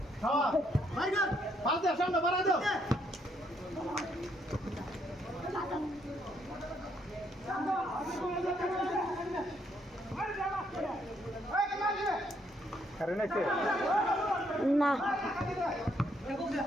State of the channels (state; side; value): normal; both; correlation 0.72